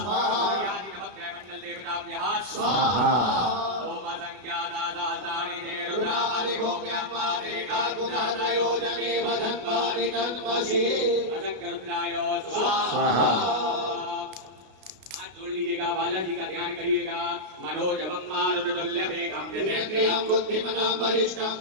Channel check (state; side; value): late; left; 33 ms